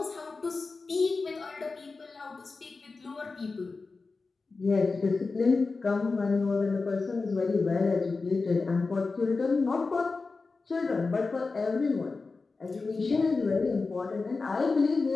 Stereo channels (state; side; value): quieter; right; 4.0 dB